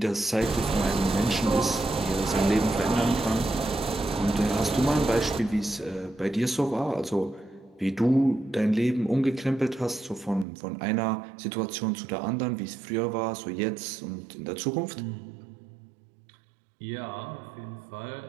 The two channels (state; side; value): drops out; left; at 10.5 s